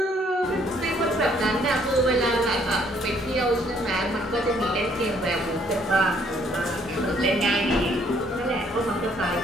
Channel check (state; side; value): normal; both; correlation 0.65